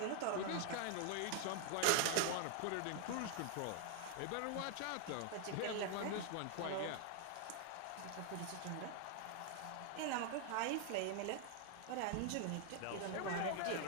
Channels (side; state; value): both; different; correlation 0.00